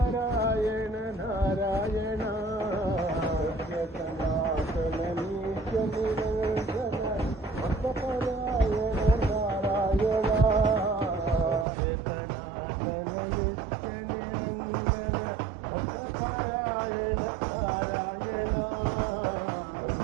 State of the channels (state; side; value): drops out; left; at 11.7 s